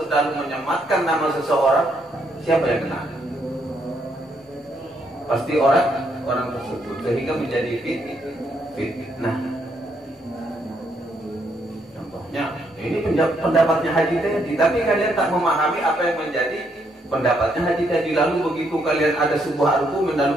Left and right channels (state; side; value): normal; both; correlation 0.74